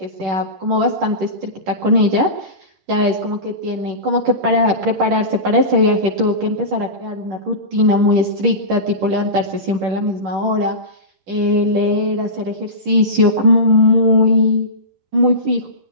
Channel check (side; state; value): left; late; 10 ms